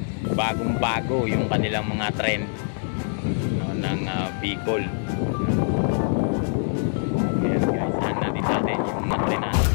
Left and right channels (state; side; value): silent; right; 62 dB below the other